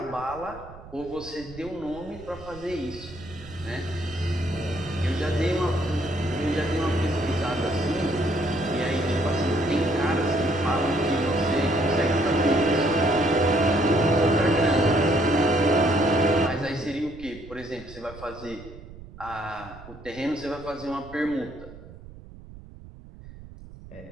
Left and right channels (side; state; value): right; noise; rumble, 17 dB below the sound